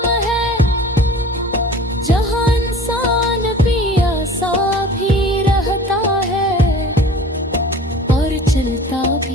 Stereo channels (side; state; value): both; normal; correlation 0.43